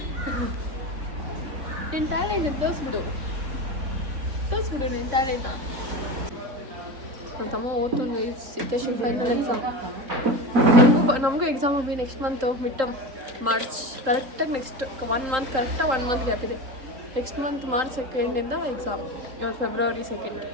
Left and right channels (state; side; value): late; left; 3.8 ms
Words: ನಿನ್ನ ಟ್ಯಾಲೆಂಟ್ ತೋರಿಸ್ಬಿಡು ನಿನ್ನ ಟ್ಯಾಲೆಂಟ ನನ್ನ ತಮ್ಮ ಓದ್ತುನ್ ಗೈಸ್ ಸಿದ್ದೇಶಿ ಫೈನಲ್ ಎಕ್ಸಾಮ್ ನಮಗೂ ಎಕ್ಸಾಮ್ ಹೋಗಿ ನೆಕ್ಸ್ಟ್ ಮಂತು ಮಿಡ್ ಮಾರ್ಚ್ ಕರೆಕ್ಟಾಗಿ ನೆಕ್ಸ್ಟ್ 1 ಮಂತ್ ಕರೆಕ್ಟಾಗಿ 1 ಮಂತ್ ಗ್ಯಾಪ್ ಇದೆ ನೆಕ್ಸ್ಟ್ ಮಂತ್ ಮಾರ್ಚ್ 2 ಎಕ್ಸಾಮ್ ಇವತ್ತು ಫೆಬ್ರವರಿ 2